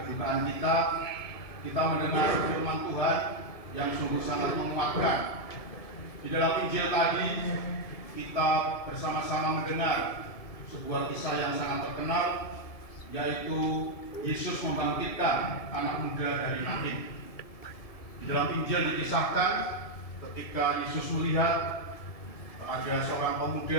kita mendengar firman Tuhan yang sungguh sangat menguatkan. Di dalam Injil tadi kita bersama-sama mendengar sebuah kisah yang sangat terkenal, yaitu Yesus membangkitkan anak muda dari Nain. Di dalam Injil dikisahkan ketika Yesus melihat ada seorang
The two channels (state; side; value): late; right; 1.7 ms